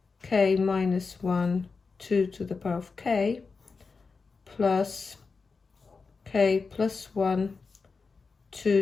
k minus 1, 2 to the power of k, plus k plus 1,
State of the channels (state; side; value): quieter; right; 4.6 dB